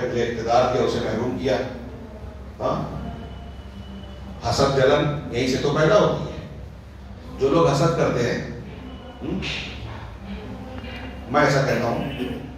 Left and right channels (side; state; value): both; identical; correlation 1.00